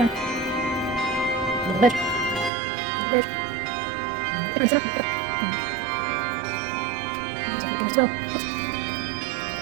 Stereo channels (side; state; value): left; drops out; at 2.5 s